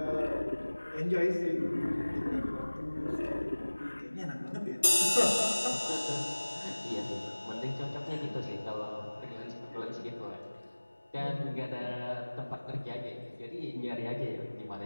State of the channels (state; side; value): inverted; both; correlation -1.00